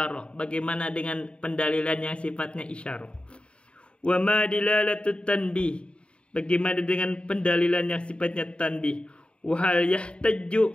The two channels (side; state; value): right; late; 0.056 ms